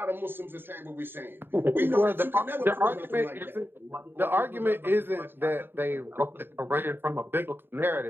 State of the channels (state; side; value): late; left; 0.10 ms